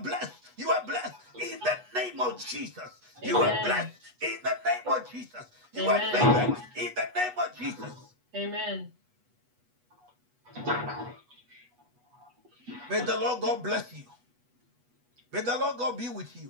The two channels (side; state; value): left; late; 8.2 ms